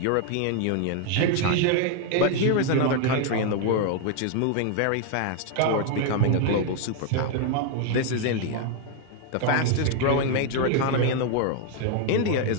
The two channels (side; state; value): both; different; correlation 0.01